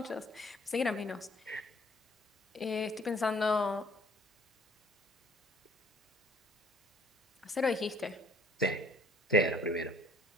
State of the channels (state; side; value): normal; both; correlation 0.58